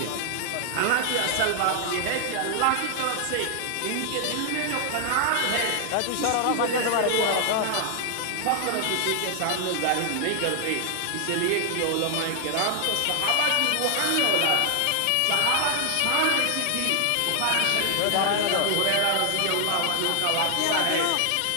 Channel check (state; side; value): different; both; correlation 0.00